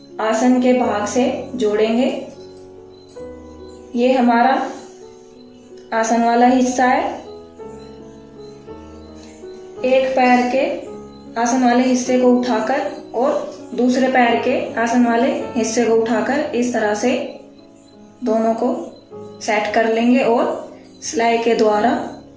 आसन के भाग से जोड़ेंगे। ये हमारा आसन वाला हिस्सा है। एक पैर के आसन वाले हिस्से को उठाकर और दूसरे पैर के आसन वाले हिस्से को उठाकर इस तरह से दोनों को सेट कर लेंगे और सिलाई के द्वारा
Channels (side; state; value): both; identical; correlation 1.00